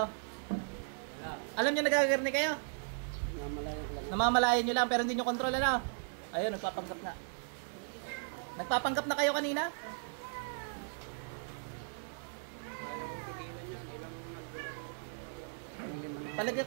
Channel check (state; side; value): silent; left; digital silence